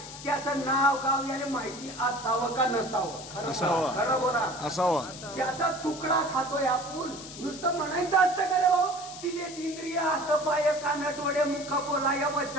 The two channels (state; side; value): noise; left; hiss, 13 dB below the sound